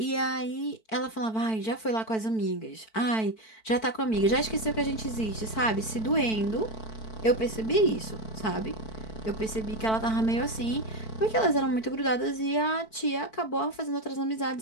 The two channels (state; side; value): late; right; 4.5 ms